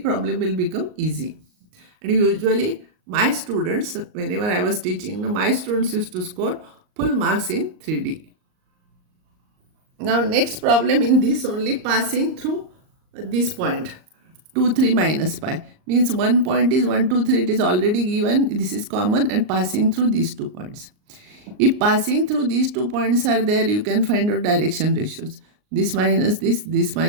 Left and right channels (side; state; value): left; late; 38 ms